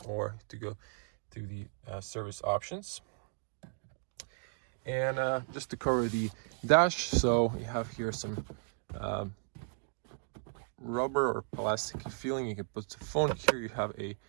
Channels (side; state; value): left; silent; 54 dB below the other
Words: or to go to the service options. And just to cover the dash, so you have here some rubber or plastic feeling. You can put the phone here. You have a